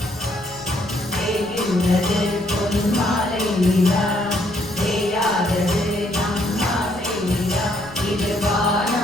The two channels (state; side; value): noise; left; rumble, 22 dB below the sound